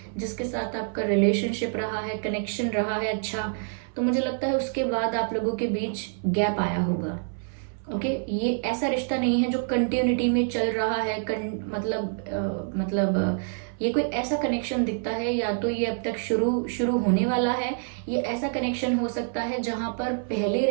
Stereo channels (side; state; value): left; silent; 60 dB below the other